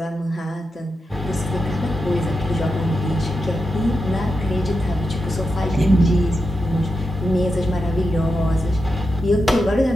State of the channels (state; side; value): normal; both; correlation 0.88